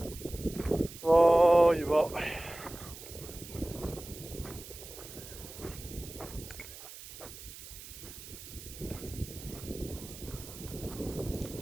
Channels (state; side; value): noise; right; hiss, 14 dB below the sound